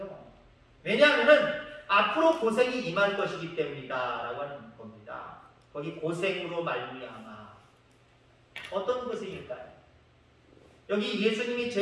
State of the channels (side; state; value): both; identical; correlation 1.00